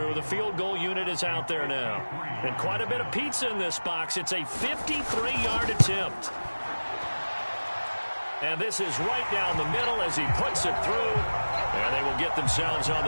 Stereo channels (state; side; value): inverted; both; correlation -1.00